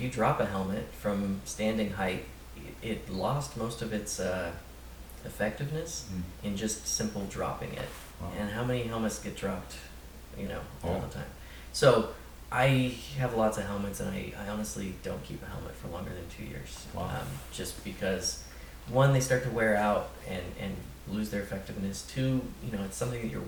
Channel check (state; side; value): identical; both; correlation 1.00